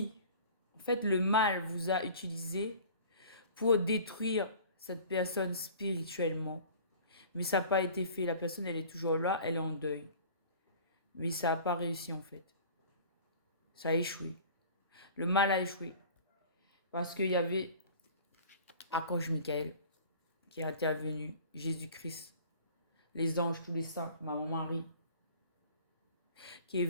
en fait, le mal vous a utilisé pour détruire cette personne spirituellement. Mais ça n'a pas été fait. La personne, elle est toujours là, elle est en deuil. Mais ça n'a pas réussi en fait. Ça a échoué. Le mal a échoué. Parce qu'il y avait Archange Michael qui est intervenu, Jésus-Christ, les anges, tous les saints, Maman Marie, qui est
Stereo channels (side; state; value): both; inverted; correlation -0.45